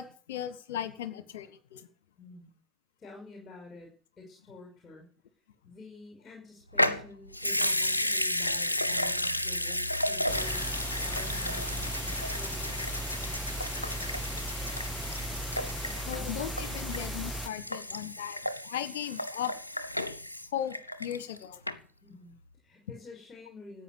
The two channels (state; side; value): inverted; both; correlation -0.53